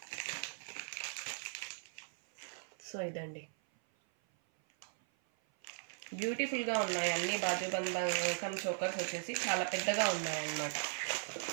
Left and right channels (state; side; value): silent; left; 52 dB below the other